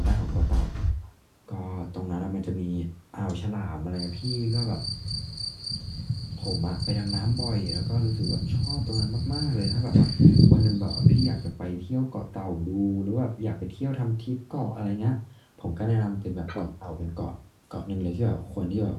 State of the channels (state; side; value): identical; both; correlation 1.00